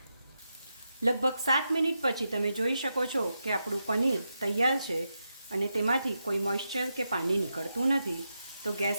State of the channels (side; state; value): both; inverted; correlation -0.87